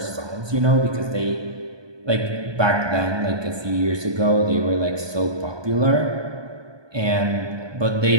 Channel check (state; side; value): late; left; 1.2 ms